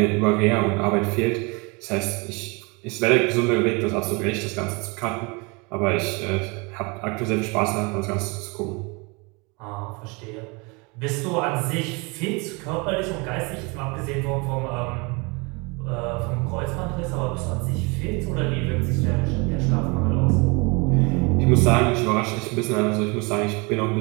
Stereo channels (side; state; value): left; quieter; 29.1 dB